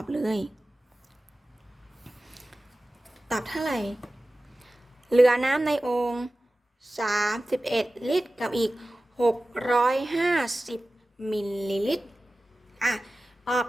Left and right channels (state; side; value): normal; both; correlation 0.96